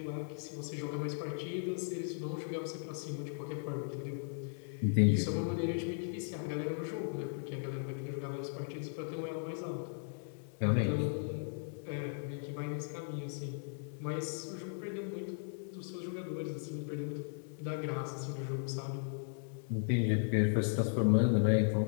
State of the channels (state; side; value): silent; right; digital silence